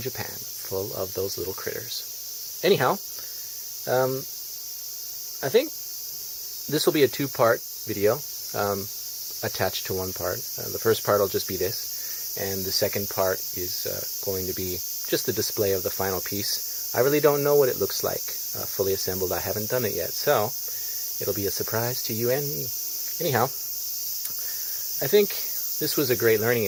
full of those little critters. Anyhow, I think this will be a two-part video attached to one part. The first part will just be this, and the second part is going to be just the display of the final piece. I really don't know what it looks like fully assembled. I haven't done it yet, so it'll be a surprise to you and me. Anyhow, I think this was a great learning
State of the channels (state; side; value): identical; both; correlation 1.00